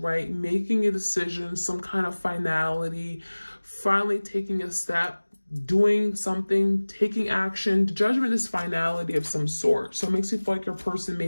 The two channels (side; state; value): both; inverted; correlation -1.00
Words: Making a decision, some kind of finality, finally taking a step, doing something, taking action. Judgment is finality of some sort. So it makes you feel like your person may